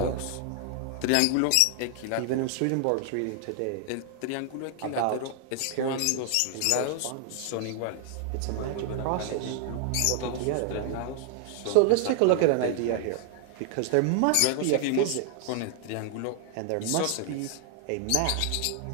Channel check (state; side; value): different; both; correlation 0.00